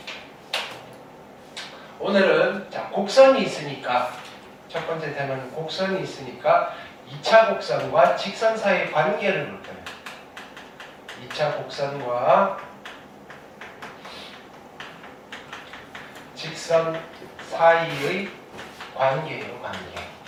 오늘은 자, 곡선이 있으니까 첫 번째 테마는 곡선이 있으니까 2차 곡선과 직선 사이의 관계를 볼 거예요. 2차 곡선과 직선 사이의 관계예요, 관계.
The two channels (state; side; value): identical; both; correlation 1.00